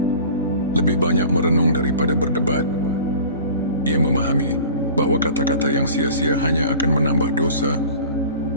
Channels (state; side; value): inverted; both; correlation -0.42